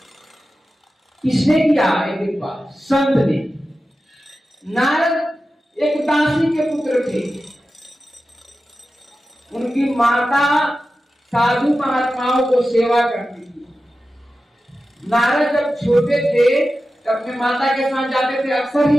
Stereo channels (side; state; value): both; normal; correlation 0.93